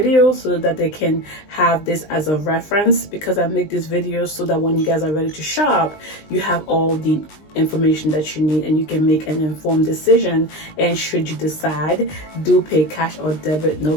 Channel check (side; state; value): right; late; 19 ms